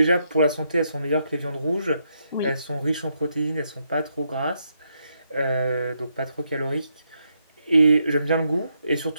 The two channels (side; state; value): both; inverted; correlation -0.79